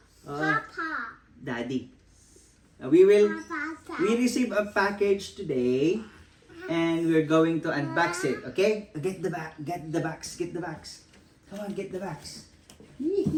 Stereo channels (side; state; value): both; identical; correlation 1.00